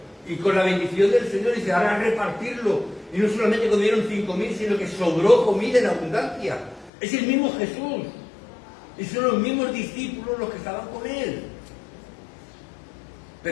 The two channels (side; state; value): right; drops out; at 6.9 s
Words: Y con la bendición del Señor dice, ahora repartirlo. Y no solamente comieron 5.000, sino que sobró comida en abundancia. Es el mismo Jesús. Y son los mismos discípulos los que estaban con él.